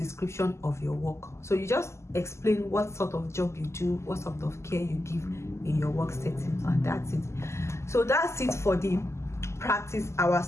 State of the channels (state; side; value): late; right; 0.13 ms